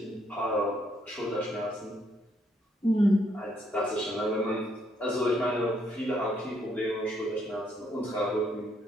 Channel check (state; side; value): normal; both; correlation 0.72